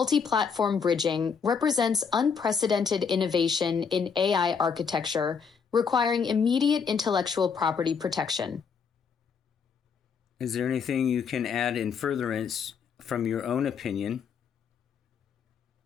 bridging represents unprecedented innovation in AI architecture, requiring immediate intellectual property protection. Is there anything you can add in furtherance from your own opinion?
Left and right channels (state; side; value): quieter; right; 6.1 dB